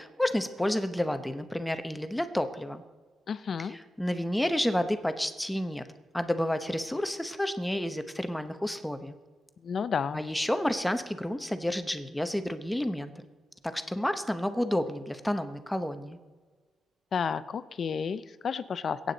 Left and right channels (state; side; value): normal; both; correlation 0.95